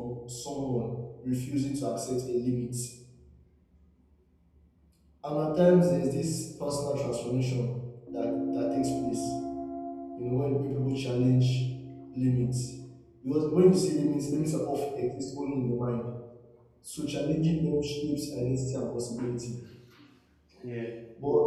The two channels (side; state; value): both; identical; correlation 1.00